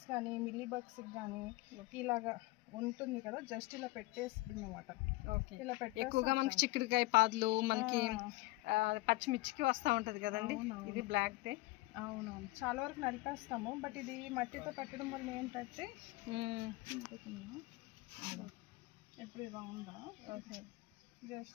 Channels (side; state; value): right; quieter; 20.5 dB